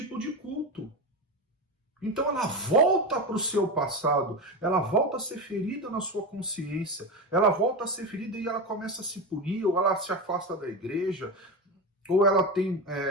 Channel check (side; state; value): both; normal; correlation 0.19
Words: de culto. Então ela volta para o seu passado, ela volta a ser ferida na sua consciência, ela volta a ser ferida e ela começa a se punir, ou ela se afasta da igreja, ou